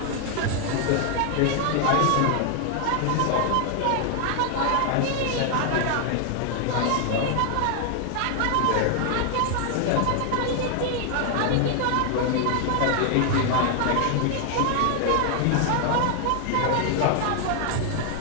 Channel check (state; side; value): different; both; correlation 0.00